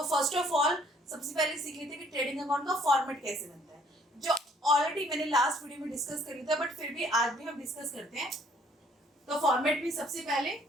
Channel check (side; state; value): both; normal; correlation 0.61